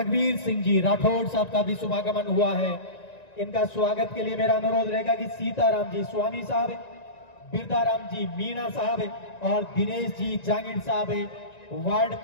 सिंह जी राठौड़ साहब का भी शुभागमन हुआ है। इनका स्वागत के लिए मेरा अनुरोध रहेगा कि सीताराम जी स्वामी साहब, बिरदाराम जी मीणा साहब और दिनेश जी जांगिड़ साहब वार्ड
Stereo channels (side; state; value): right; late; 1.9 ms